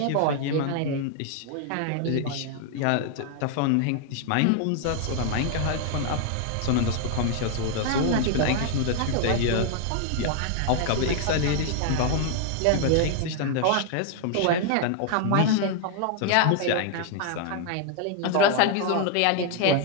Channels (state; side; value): different; both; correlation 0.00